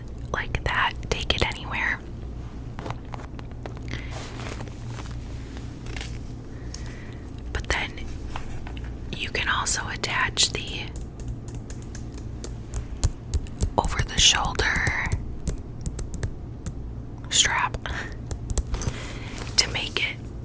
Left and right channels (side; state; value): both; identical; correlation 1.00